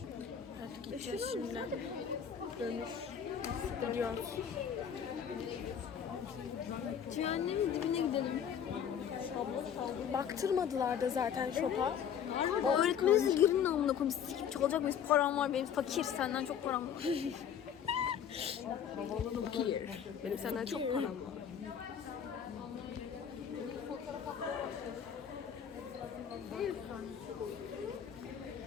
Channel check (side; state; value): right; quieter; 8.2 dB